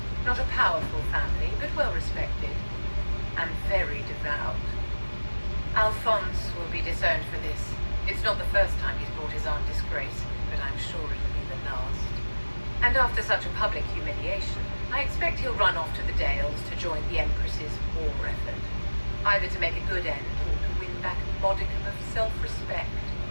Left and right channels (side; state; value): both; inverted; correlation -1.00